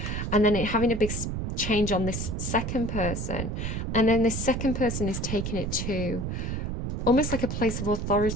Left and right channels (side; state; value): right; noise; rumble, 3 dB below the sound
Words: And then having a big change on this second person, and then this second person is taking it to almost like a place of